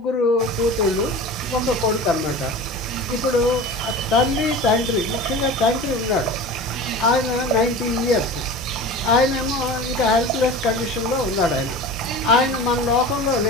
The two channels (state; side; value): normal; both; correlation 0.34